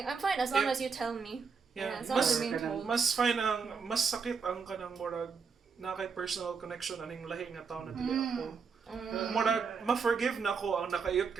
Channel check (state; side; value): quieter; left; 5.5 dB